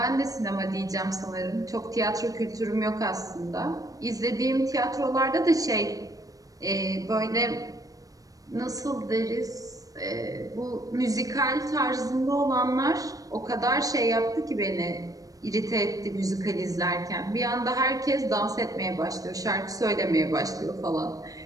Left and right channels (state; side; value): late; left; 0.17 ms